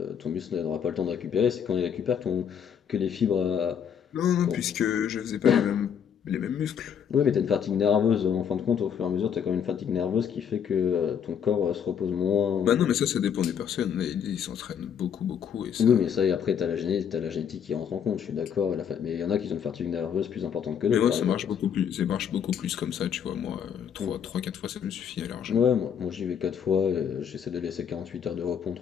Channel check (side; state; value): right; quieter; 8.0 dB